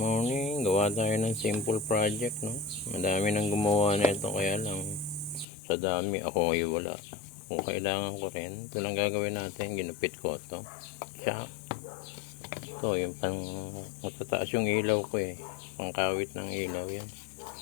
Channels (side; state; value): right; drops out; at 5.5 s